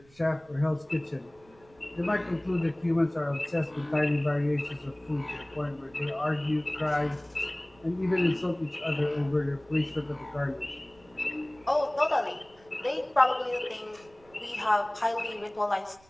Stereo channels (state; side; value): noise; right; rumble, 28 dB below the sound